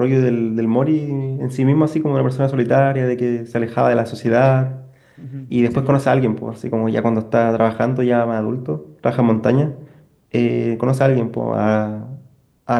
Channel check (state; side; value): identical; both; correlation 1.00